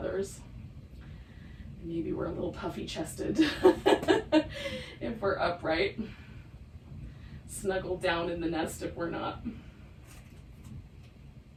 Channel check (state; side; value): identical; both; correlation 1.00